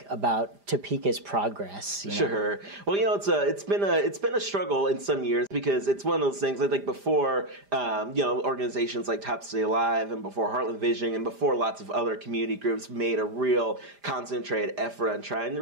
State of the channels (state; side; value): late; left; 5.0 ms